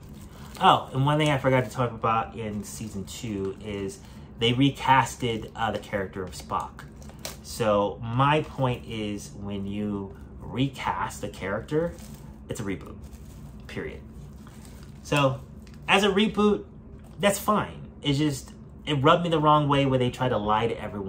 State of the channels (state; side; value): identical; both; correlation 1.00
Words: Oh, and one thing I forgot to talk about in season 2 is they recasted the character of Spock. So my point is, when you recast a character, it's a reboot, period. So as a reboot, that's fine. It's just, it rubbed me the wrong way where they tried to lie to